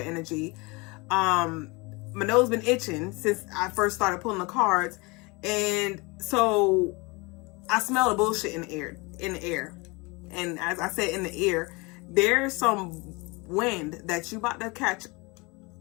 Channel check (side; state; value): right; quieter; 26.6 dB